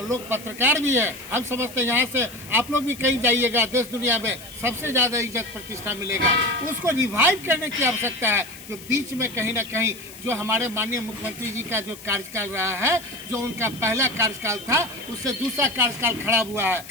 लोग पत्रकार भी है, हम समझते हैं यहाँ से आप लोग भी कहीं जाइएगा देश दुनिया में सबसे ज़्यादा इज्जत प्रतिष्ठा मिलेगा। उसको रिवाइव करने की आवश्यकता है। जो बीच में कहीं ना कहीं जो हमारे माननीय मुख्यमंत्री जी का जो कार्यकाल रहा है, जो उनका पहला कार्यकाल था, उससे दूसरा कार्यकाल खराब हुआ है,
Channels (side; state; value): left; noise; hiss, 17 dB below the sound